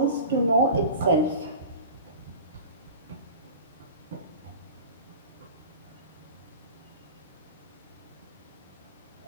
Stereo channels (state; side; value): inverted; both; correlation -0.35